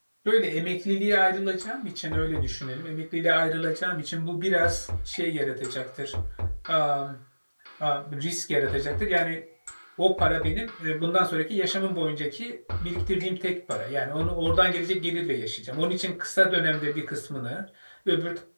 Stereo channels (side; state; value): both; inverted; correlation -1.00